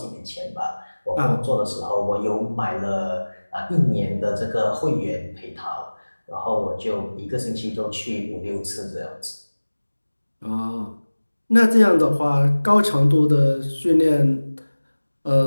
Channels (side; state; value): both; inverted; correlation -1.00